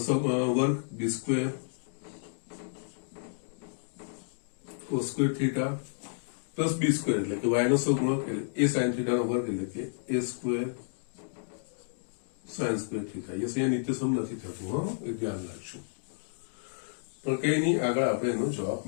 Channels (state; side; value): silent; right; digital silence